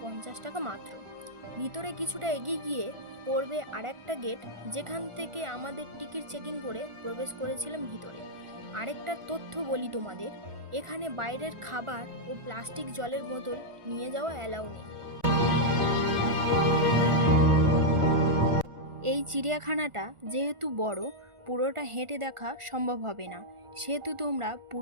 50 টাকা মাত্র। ভিতরে কিছুটা এগিয়ে গিয়ে পড়বে আরেকটা গেট, যেখান থেকে আমাদের টিকিট চেকিং করে প্রবেশ করেছিলাম ভিতরে। আরেকটা তথ্য বলি তোমাদের, এখানে বাইরের খাবার ও প্লাস্টিক জলের বোতল নিয়ে যাওয়া অ্যালাউ নেই। এই চিড়িয়াখানাটা যেহেতু বড়, পুরোটা হেঁটে দেখা সম্ভব হবে না, সেহেতু তোমরা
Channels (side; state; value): left; late; 1.4 ms